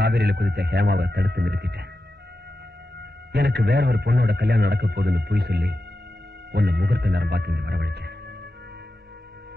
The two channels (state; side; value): normal; both; correlation 0.91